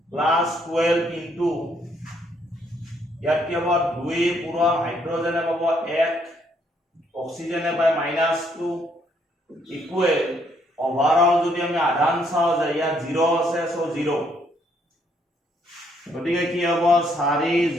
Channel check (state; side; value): normal; both; correlation 0.70